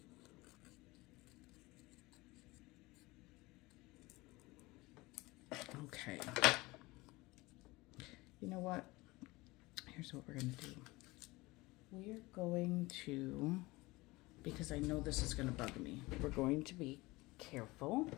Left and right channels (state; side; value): quieter; right; 21.7 dB